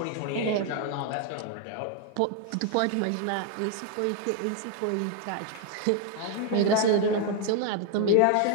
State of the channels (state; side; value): different; both; correlation 0.00